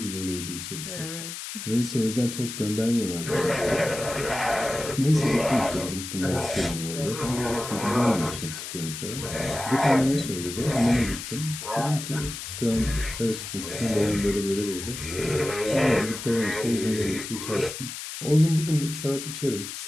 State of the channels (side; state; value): left; noise; hiss, 8 dB below the sound